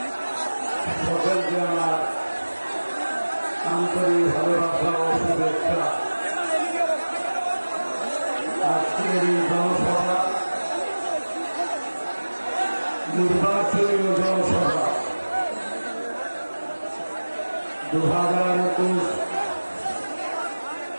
সকলকে আমার আন্তরিক ভালোবাসা ও শুভেচ্ছা। আজকের এই জনসভা নির্বাচনী জনসভা 2021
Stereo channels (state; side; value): inverted; both; correlation -1.00